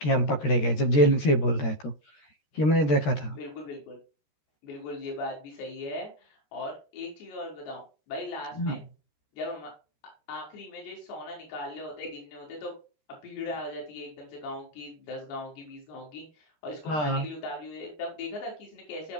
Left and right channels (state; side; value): late; right; 13 ms